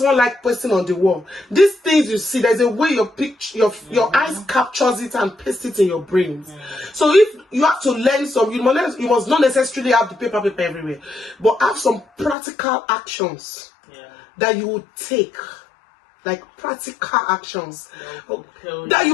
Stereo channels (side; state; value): right; drops out; at 12.4 s